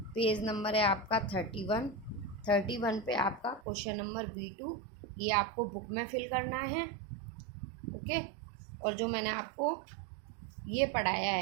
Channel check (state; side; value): drops out; left; at 3.6 s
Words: है आपका 31 पे आपका क्वेश्चन नंबर B2, ये आपको बुक में फिल करना है। ओके। और जो मैंने आपको ये पढ़ाया